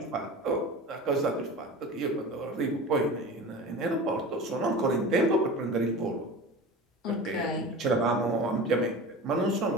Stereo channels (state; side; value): normal; both; correlation 0.33